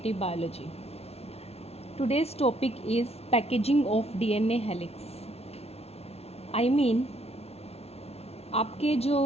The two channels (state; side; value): late; right; 0.30 ms